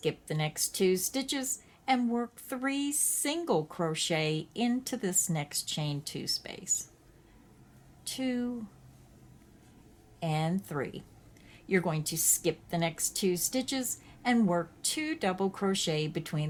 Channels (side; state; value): both; identical; correlation 1.00